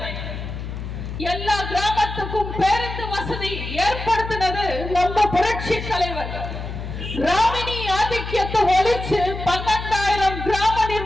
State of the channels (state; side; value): noise; left; hum, 7 dB below the sound